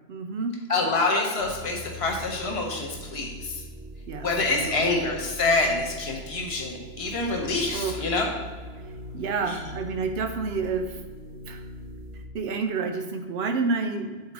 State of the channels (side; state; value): left; late; 2.9 ms